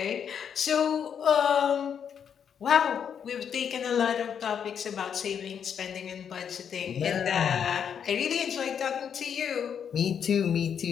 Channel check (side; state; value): right; quieter; 7.8 dB